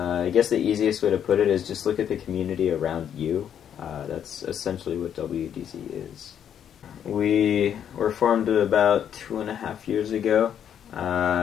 guess the easiest way to put it is just look at the community around you. That's essentially what WDZ is. We were formed about 2.5 years ago.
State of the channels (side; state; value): right; quieter; 9.1 dB